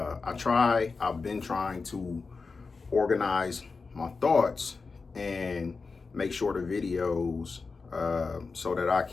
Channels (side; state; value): right; quieter; 4.4 dB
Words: been trying to organize my thoughts and make sure the videos so that I